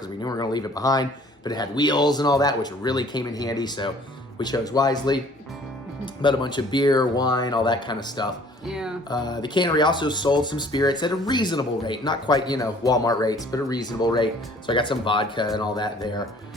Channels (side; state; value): both; normal; correlation 0.54